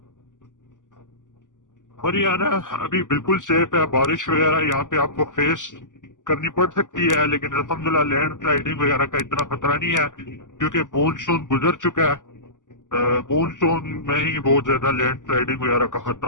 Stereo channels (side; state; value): right; late; 0.87 ms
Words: مری آنا ابھی بالکل سیف ہے. بارش وغیرہ یہاں پہ آپ کو فیس کرنی پڑ سکتی ہے، لیکن الحمدللہ لینڈ سلائڈنگ وغیرہ کا اتنا خطرہ نہیں ہے کیونکہ مونسون گزر چکا ہے. مونسون میں ہی بہت زیادہ لینڈ سلائڈنگ وغیرہ کا